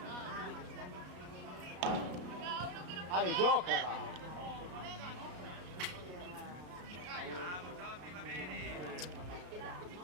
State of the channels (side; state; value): left; late; 33 ms